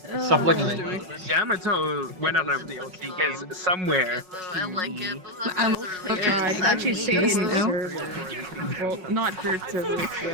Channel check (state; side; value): late; left; 5.4 ms